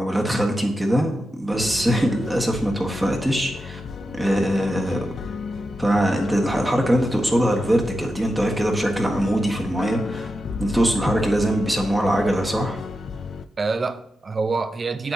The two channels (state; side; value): normal; both; correlation 0.89